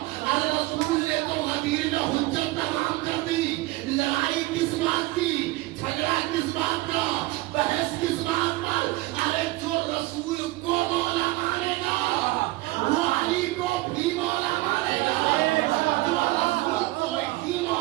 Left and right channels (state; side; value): quieter; left; 19.7 dB